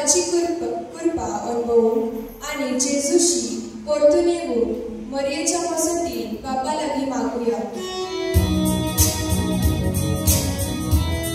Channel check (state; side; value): identical; both; correlation 1.00